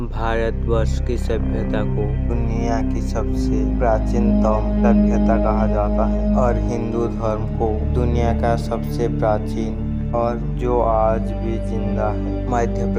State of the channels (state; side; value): identical; both; correlation 1.00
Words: की सभ्यता को दुनिया की सबसे प्राचीनतम सभ्यता कहा जाता है और हिंदू धर्म को दुनिया का सबसे प्राचीन और जो आज भी जिंदा है। मध्य